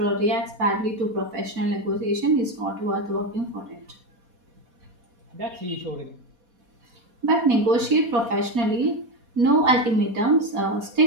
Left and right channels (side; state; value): left; late; 4.2 ms